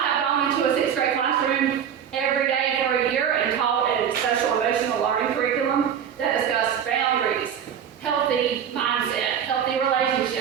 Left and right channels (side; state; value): left; quieter; 8.5 dB